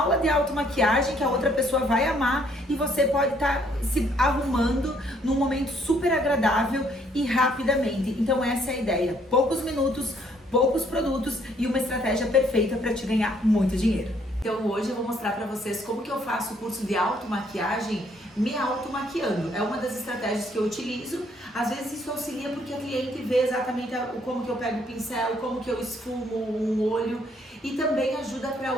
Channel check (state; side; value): normal; both; correlation 0.66